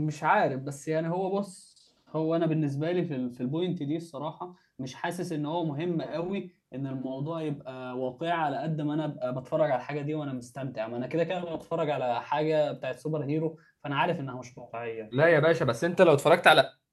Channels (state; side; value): identical; both; correlation 1.00